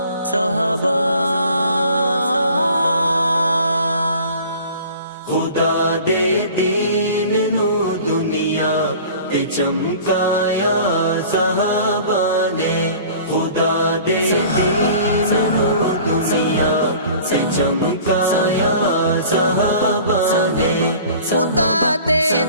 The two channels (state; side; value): inverted; both; correlation -0.45